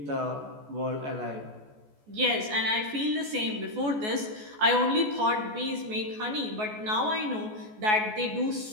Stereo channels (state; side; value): late; left; 14 ms